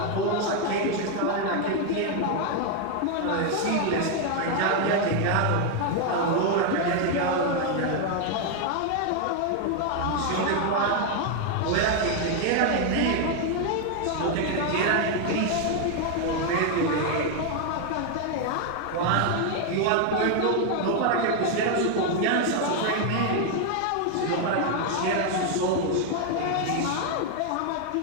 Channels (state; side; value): different; both; correlation 0.01